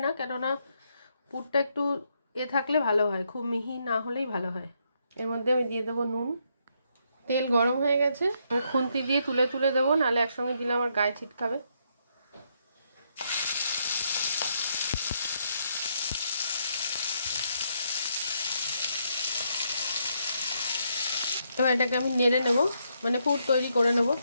না, কেননা পুরটা একটু থাকলে ভালো হয়, খুব মিহি না হলেই ভালো হয়। এর মধ্যে আমি দিয়ে দেবো নুন। তেল গরম হয়ে গেছে, আমি খুন্তি দিয়ে তুলে তুলে দেবো, নাহলে একসঙ্গে দিলে আমার গায়ে ছিটকাবে। এবার এটাকে আমি নেড়ে নেব, মানে পুর তৈরি করে নেব।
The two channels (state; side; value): inverted; both; correlation -0.76